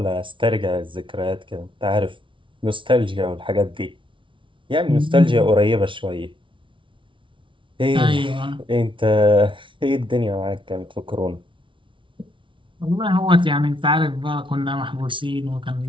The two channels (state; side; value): late; left; 0.25 ms